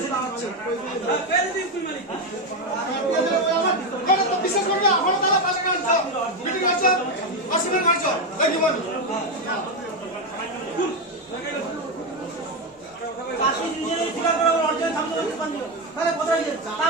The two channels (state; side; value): normal; both; correlation 0.09